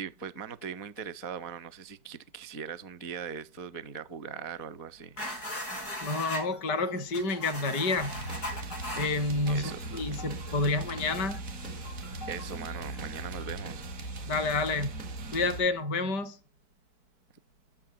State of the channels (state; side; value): late; right; 4.6 ms